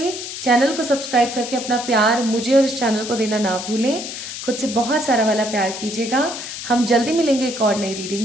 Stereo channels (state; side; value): noise; left; hiss, 8 dB below the sound